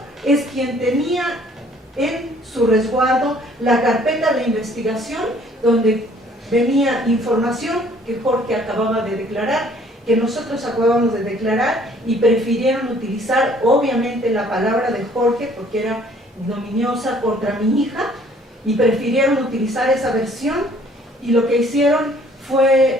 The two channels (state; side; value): normal; both; correlation 0.58